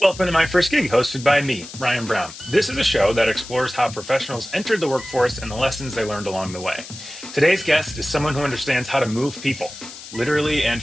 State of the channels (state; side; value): noise; left; hiss, 14 dB below the sound